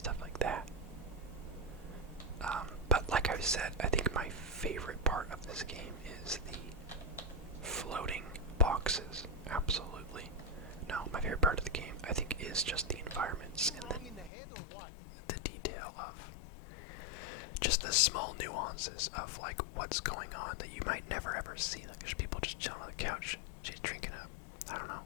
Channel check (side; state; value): right; drops out; at 14.3 s